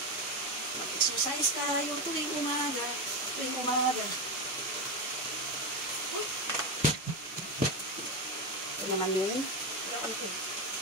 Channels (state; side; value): normal; both; correlation 0.13